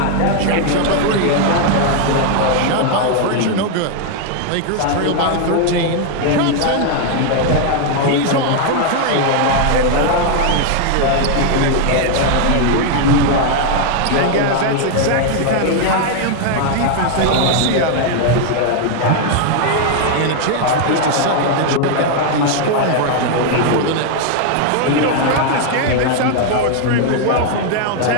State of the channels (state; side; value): different; both; correlation 0.00